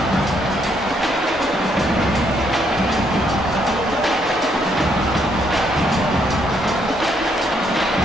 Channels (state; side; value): normal; both; correlation 0.72